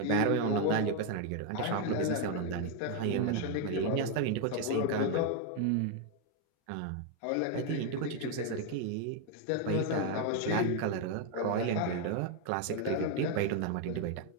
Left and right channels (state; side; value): different; both; correlation 0.01